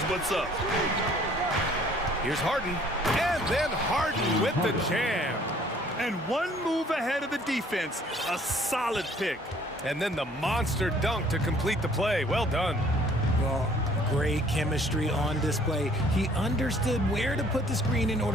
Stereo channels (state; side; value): normal; both; correlation 0.58